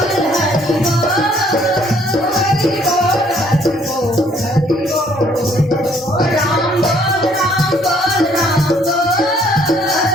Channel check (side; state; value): both; normal; correlation 0.63